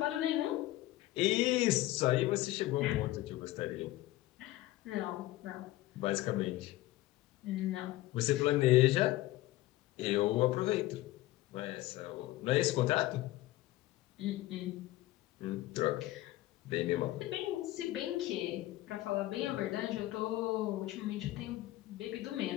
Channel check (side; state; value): right; quieter; 16.7 dB